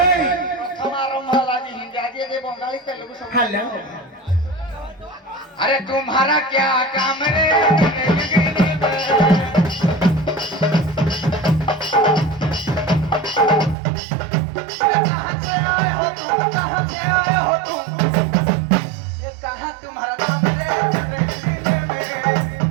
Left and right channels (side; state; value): left; drops out; at 13.8 s